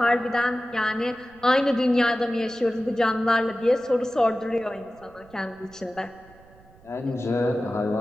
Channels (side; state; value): right; noise; rumble, 26 dB below the sound